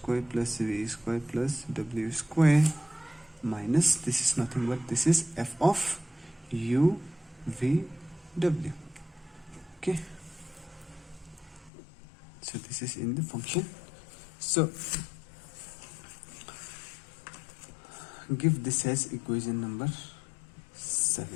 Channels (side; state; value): right; drops out; at 11.7 s